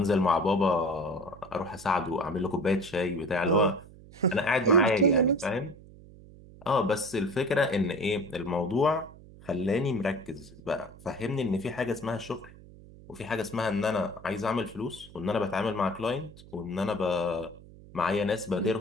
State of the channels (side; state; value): right; noise; hum, 20 dB below the sound